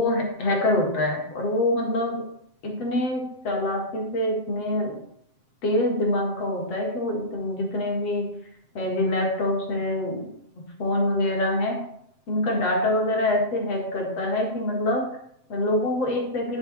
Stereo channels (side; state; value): right; late; 7.6 ms